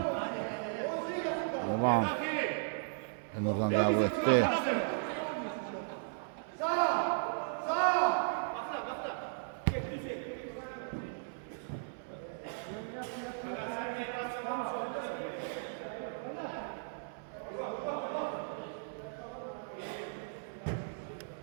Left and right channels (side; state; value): left; silent; 54 dB below the other